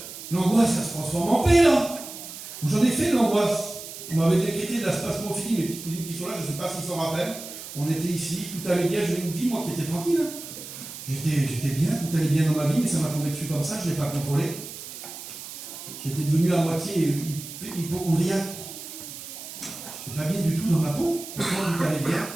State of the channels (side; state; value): right; noise; hiss, 12 dB below the sound